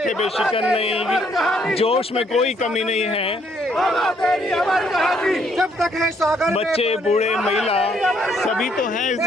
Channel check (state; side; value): normal; both; correlation 0.68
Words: पे शिकन नहीं, जोश में कोई कमी नहीं है। बाबा तेरी अमर कहानी जब तक है सागर में बच्चे पानी। बूढ़े महिला सभी तो हैं इस